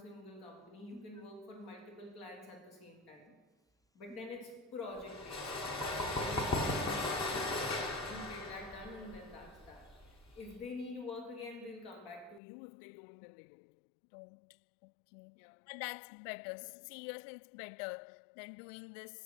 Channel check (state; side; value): drops out; right; at 12.4 s